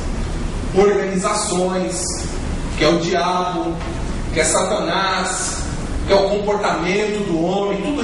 organizações, que é o diabo, que é Satanás, que é o comportamento do homem, tudo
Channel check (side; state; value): both; identical; correlation 1.00